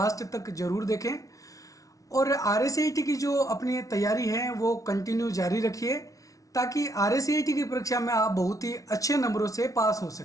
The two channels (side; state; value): right; late; 0.17 ms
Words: तक ज़रूर देखें और आरएससीईटी की जो अपनी तैयारी है वो कंटिन्यू जारी रखिए ताकि आरएससीईटी की परीक्षा में आप बहुत ही अच्छे नंबरों से पास हो